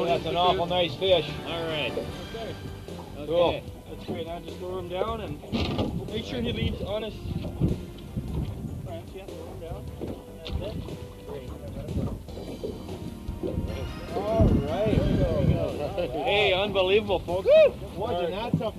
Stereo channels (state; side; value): identical; both; correlation 1.00